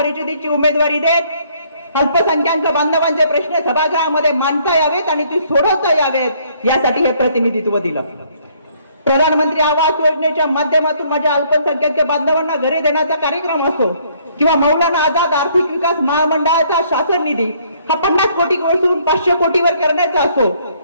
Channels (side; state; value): both; inverted; correlation -0.64